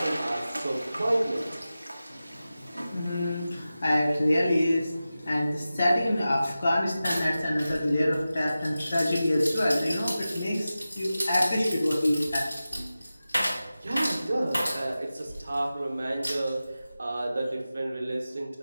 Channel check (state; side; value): inverted; both; correlation -0.94